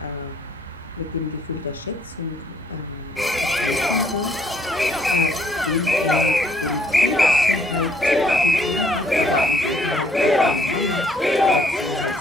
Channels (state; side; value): normal; both; correlation 0.65